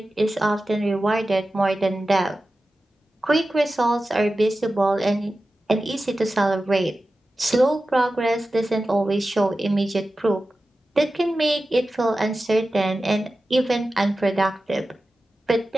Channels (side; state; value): both; normal; correlation 0.94